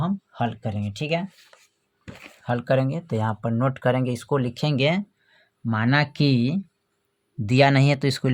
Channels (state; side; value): identical; both; correlation 1.00